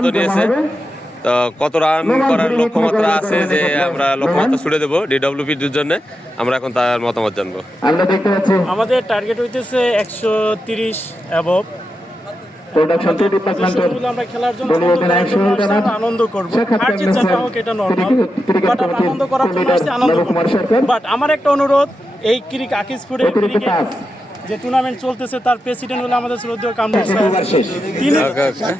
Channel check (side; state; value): both; normal; correlation 0.88